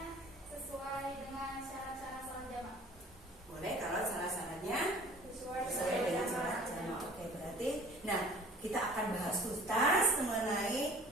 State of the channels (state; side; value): normal; both; correlation 0.50